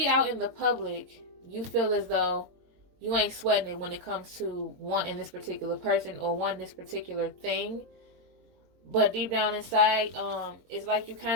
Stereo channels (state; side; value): late; left; 22 ms